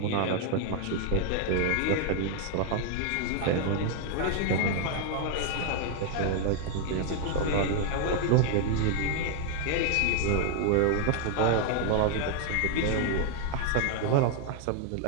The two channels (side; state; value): both; different; correlation 0.00